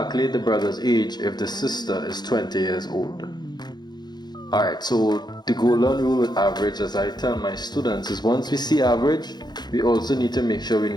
the brother's age if the sister is 20 years old. Alright, so the golden rule with average, as I tell my students, is once we see average, we also need to make sure we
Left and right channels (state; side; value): late; right; 0.20 ms